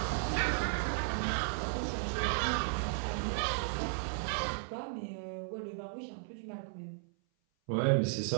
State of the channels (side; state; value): left; silent; 54 dB below the other